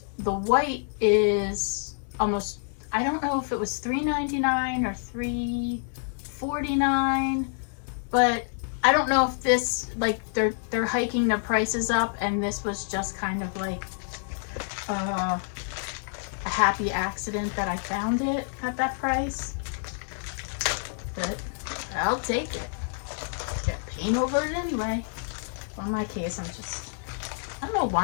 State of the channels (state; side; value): silent; right; 60 dB below the other